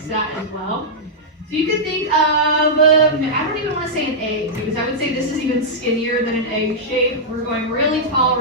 that as well. So you can think of, I don't even want to say an egg, because I would say this is even skinnier than an egg shape. We're going really tall,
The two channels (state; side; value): normal; both; correlation -0.09